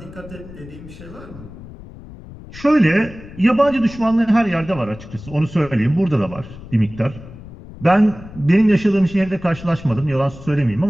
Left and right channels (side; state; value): left; noise; rumble, 16 dB below the sound